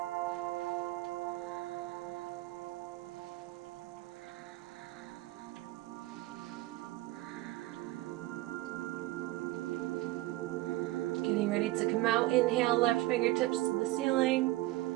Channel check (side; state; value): left; quieter; 18.2 dB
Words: Getting ready to come out. Inhale, left fingertips to the ceiling.